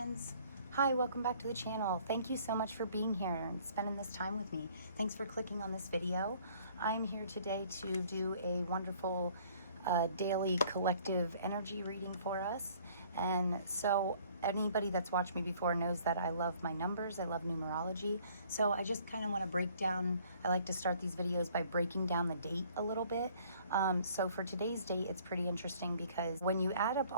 Hi, welcome back to the channel. Thank you so much for being here and spending this time with me. Thanks for clicking on this video. I'm here today to do a wonderful daily collective energy reading for us. And so anybody that's watched me before knows that I love my numbers. I love numerology. So I just kind of want to break down, I like to start these videos by breaking down the date a little bit. So for today's date, it's pretty interesting because when you add up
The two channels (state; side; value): inverted; both; correlation -0.57